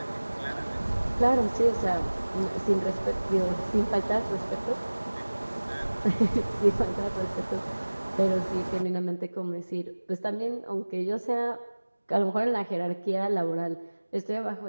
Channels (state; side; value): inverted; both; correlation -1.00